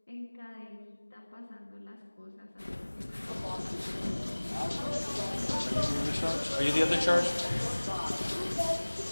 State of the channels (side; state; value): both; inverted; correlation -1.00